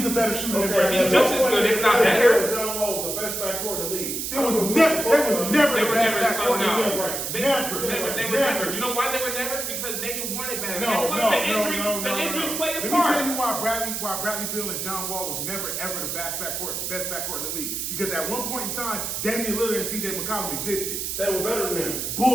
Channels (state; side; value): noise; right; hiss, 3 dB below the sound